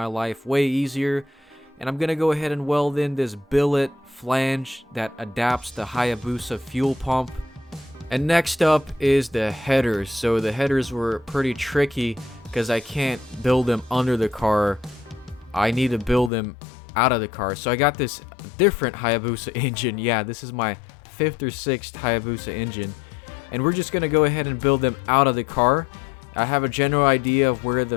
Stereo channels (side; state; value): right; drops out; at 16.3 s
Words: life way easier. And I'm going to go ahead and weld in this billet flange that adapts the Hayabusa fuel pump. And next up is the headers. So the headers were pretty tricky because I can't build them under the car. I need to build them out of the car. So I got this different Hayabusa engine. Yeah, this is my 5th or 6th Hayabusa engine. And we're just going to go ahead and build them out of the car. I have a general idea of where